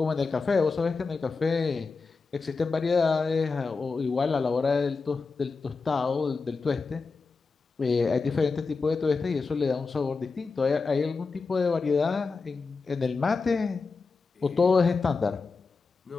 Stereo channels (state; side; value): quieter; right; 4.4 dB